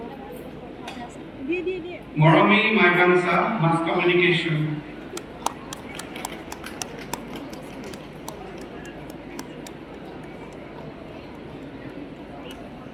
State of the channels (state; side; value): identical; both; correlation 1.00